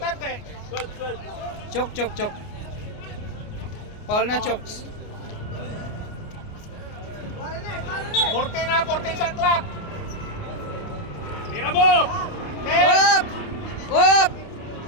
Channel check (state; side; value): late; right; 29 ms